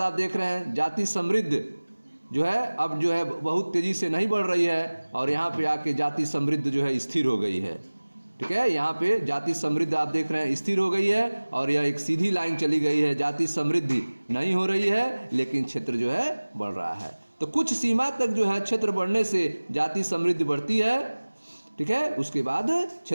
आप देख रहे हैं जाति समृद्ध जो है अब जो है बहुत तेजी से नहीं बढ़ रही है और यहाँ पे आके जाति समृद्ध जो है स्थिर हो गई है। ठीक है, यहाँ पे जाति समृद्ध आप देख रहे हैं स्थिर हो गई है और यह एक सीधी लाइन चली गई है। जाति समृद्धि नहीं हो रही है लेकिन क्षेत्र जो है बढ़ रहा है। तो कुछ सीमा तक जो है क्षेत्र बढ़ने से जाति समृद्धि बढ़ती है। ठीक है, उसके बाद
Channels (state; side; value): inverted; both; correlation -1.00